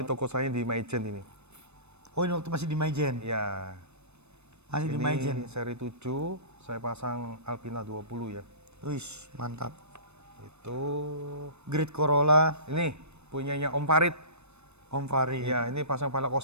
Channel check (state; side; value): late; left; 0.81 ms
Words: toko saya di Maijen ini. Oh, ini waktu masih di Maijen. Ya. Masih di Maijen. Ini seri 7, saya pasang Alpina 20 ya. Wih, mantap. Itu Grid Corolla, ini punyanya Om Farid. Om Farid. Ya, ini pasang velg